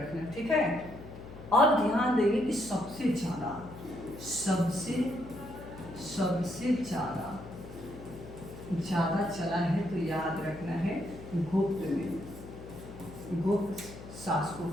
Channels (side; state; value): left; noise; hum, 14 dB below the sound